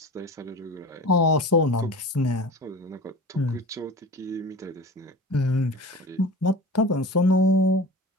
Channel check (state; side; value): normal; both; correlation 0.34